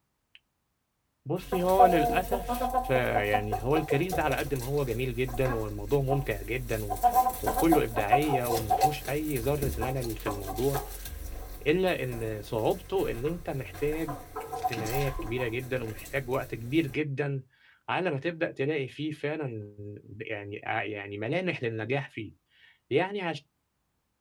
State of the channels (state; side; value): identical; both; correlation 1.00